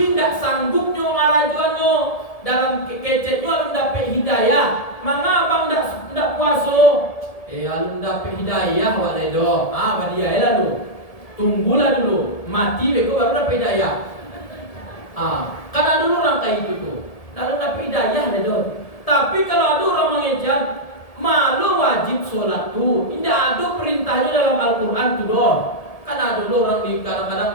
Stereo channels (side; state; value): right; late; 1.7 ms